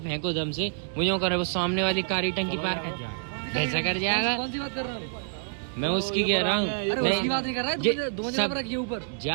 दम से, वो जो कर रहा है, वो सामने वाली कारी टंकी पार कर जाएगा। कैसा कर जाएगा? कौन सी बात कर रहा है? मैं उसकी कह रहा हूँ। नहीं बात नहीं कर रहा है, दो जगह पर रखिए ऊपर।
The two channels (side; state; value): left; silent; digital silence